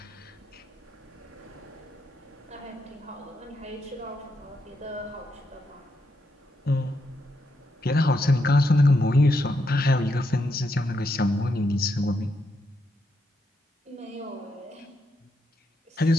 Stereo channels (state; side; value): normal; both; correlation 0.80